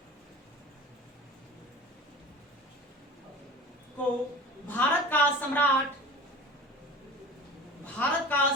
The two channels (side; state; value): both; normal; correlation 0.38